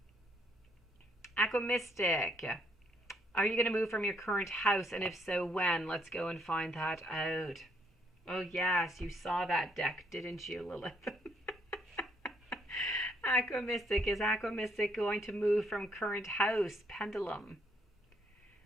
Aquamystic. Are you going to move from your current house? And if so, when? Let's go and find that out. Oh, yes. You saw that deck, didn't you, Lilith? Aquamystic. Is Aquamystic going to move from current house? Pendulum.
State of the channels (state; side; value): normal; both; correlation 0.71